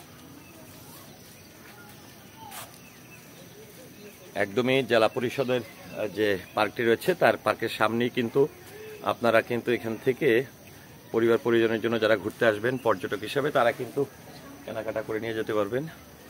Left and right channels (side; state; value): both; identical; correlation 1.00